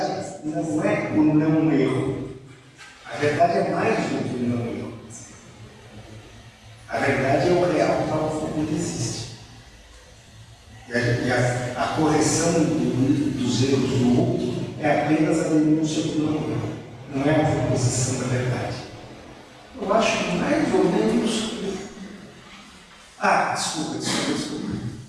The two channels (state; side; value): identical; both; correlation 1.00